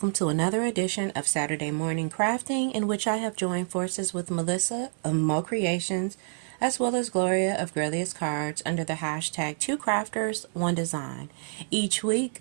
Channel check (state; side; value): silent; left; 59 dB below the other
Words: to another edition of Saturday Morning Crafting, in which I have joined forces with Melissa of Mo Creations as well as Gloria of Grelius Cards under the hashtag Two Crafters, One Design. Each week